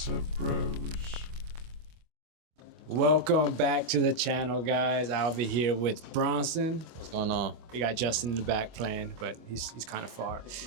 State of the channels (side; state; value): left; late; 25 ms